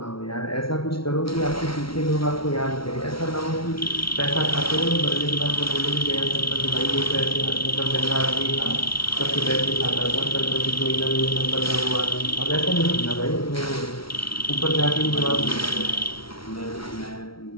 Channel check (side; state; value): right; late; 0.75 ms